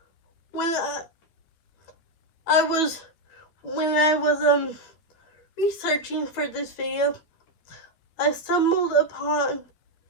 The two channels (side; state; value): right; late; 12 ms